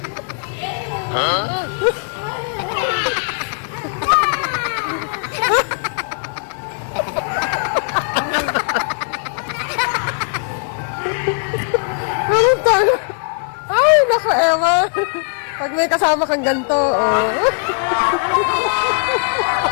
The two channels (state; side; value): silent; right; 58 dB below the other